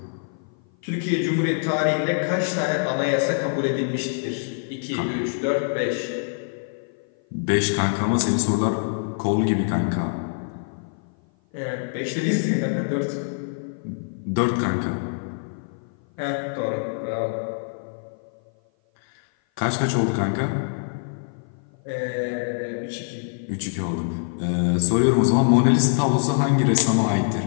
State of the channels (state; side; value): silent; right; 56 dB below the other